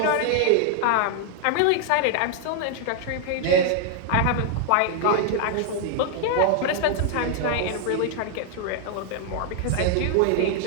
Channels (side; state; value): both; different; correlation 0.00